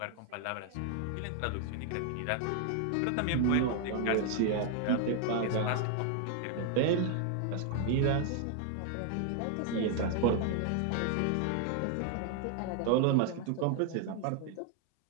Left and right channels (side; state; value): both; different; correlation 0.00